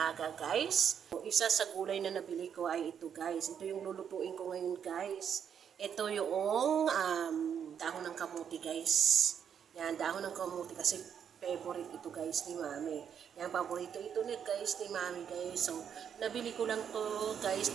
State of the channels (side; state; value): left; quieter; 8.1 dB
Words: guys, isa sa gulay na nabili ko ay ito guys. Ito yung lulutuin ko ngayon guys. Ito yung dahon ng kamuti guys. Yan, dahon ng kamuti kasi favorite ito guys ni Mami. Yan, paborito ito ni guys ni Mami guys. So, nabili ko lang to guys